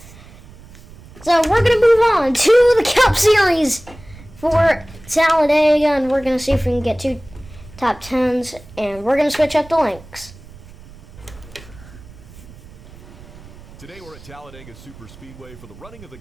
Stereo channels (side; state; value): right; noise; rumble, 20 dB below the sound